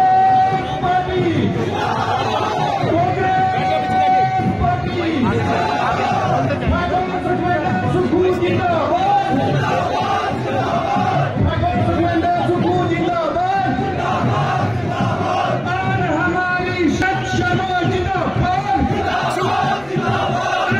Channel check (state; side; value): noise; left; rumble, 26 dB below the sound